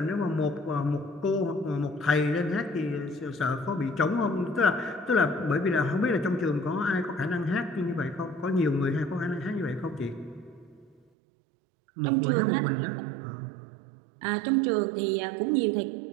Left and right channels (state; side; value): drops out; left; at 11.0 s